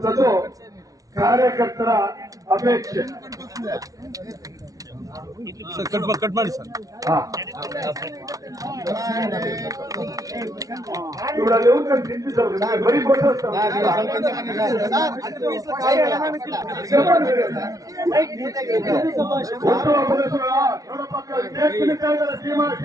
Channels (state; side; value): late; left; 0.18 ms